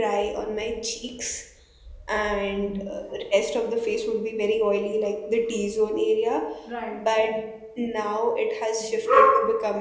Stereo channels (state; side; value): identical; both; correlation 1.00